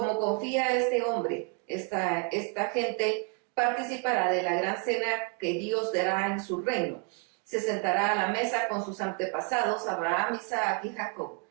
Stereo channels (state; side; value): quieter; left; 33.4 dB